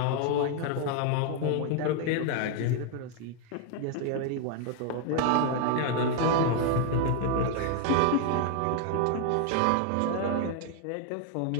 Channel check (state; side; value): different; both; correlation 0.00